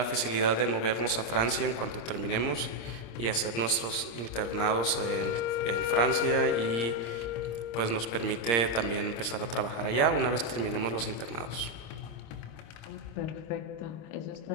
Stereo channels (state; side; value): late; right; 26 ms